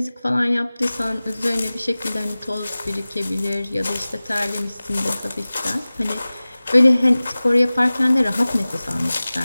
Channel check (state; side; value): inverted; both; correlation -0.98